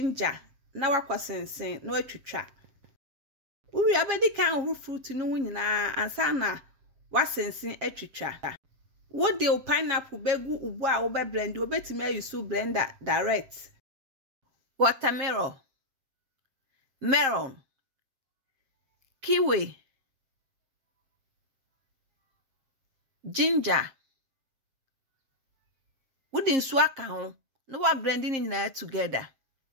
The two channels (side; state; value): left; late; 7.6 ms